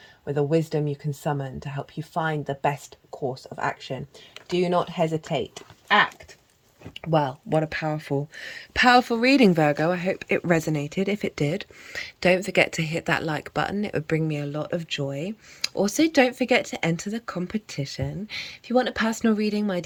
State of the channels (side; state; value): both; identical; correlation 1.00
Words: with a wisdom you can summon to help you find the best course of action. Do not hesitate. Act. Well, what a powerful reading, Virgo. I hope it resonated. If it did, don't forget to hit that like button. It would bring me a lot of joy. Also, don't forget to enter the competition. If you want a personal reading, my